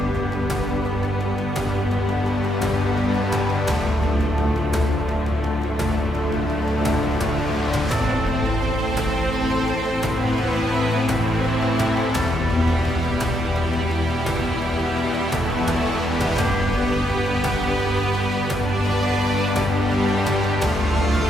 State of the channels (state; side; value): normal; both; correlation 0.77